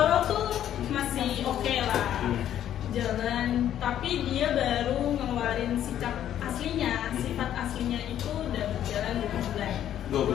tuh masih oke lah jalan, tapi dia baru ngeluarin sikap aslinya, sifat aslinya itu udah berjalan 2 bulan. 2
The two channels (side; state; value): right; quieter; 10.9 dB